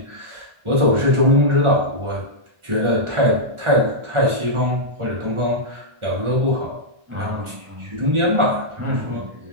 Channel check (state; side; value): late; left; 1.4 ms